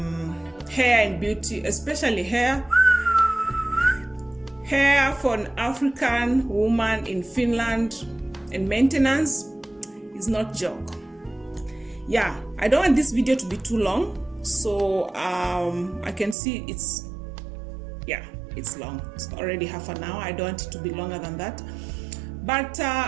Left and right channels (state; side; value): drops out; left; at 16.4 s